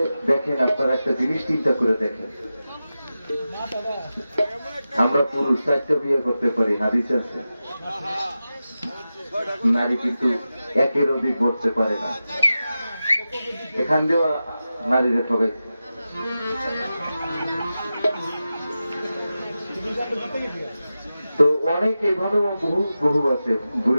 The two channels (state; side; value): inverted; both; correlation -0.93